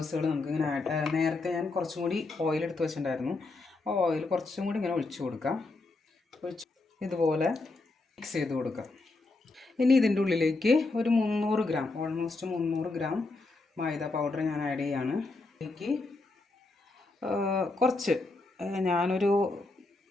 നമുക്കിങ്ങനെ നേരത്തെ ഞാൻ കുറച്ചും കൂടി ഓയിൽ എടുത്ത് വെച്ചിട്ടുണ്ടായിരുന്നു. ആ ഓയിൽ കുറച്ചും കൂടി ഇങ്ങനെ ഒഴിച്ചു കൊടുക്കാം. ഇതുപോലെ മിക്സ് ചെയ്ത് കൊടുക്കാം. ഇനി ഇതിൻ്റെ ഉള്ളിലേക്ക് ഒരു 300 ഗ്രാം, ഓൾമോസ്റ്റ് 300 ഗ്രാം മൈദ പൗഡർ ഞാൻ ആഡ് ചെയ്യാണ്. ഇതിലേക്ക് കുറച്ച് ഞാനൊരു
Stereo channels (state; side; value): quieter; right; 3.3 dB